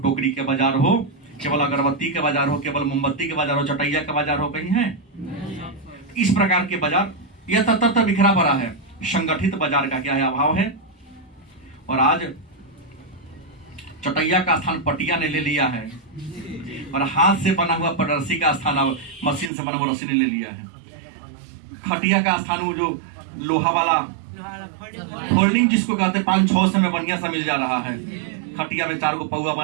के बाजार हो, केवल अगरबत्ती के बाजार हो, केवल मोमबत्ती के बाजार हो, चटैया का बाजार हो, कहीं है? इस प्रकार के बाजार यह तत्र बिखरा पड़ा है। संगठित बाजार का क्या है? अभाव है। और आज चटैया का स्थान पटिया ने ले लिया है और हाथ से बना हुआ रस्सी का स्थान अब मशीन से बना हुआ रस्सी ने ले लिया है। खटिया का स्थान वो जो लोहा वाला फोल्डिंग जिसको कहते हैं 5-6 में बढ़िया सा मिल जा रहा है। खटिया में 4 पौआ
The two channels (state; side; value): drops out; left; at 19.5 s